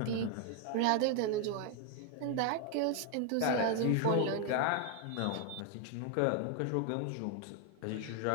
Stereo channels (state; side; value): different; both; correlation 0.00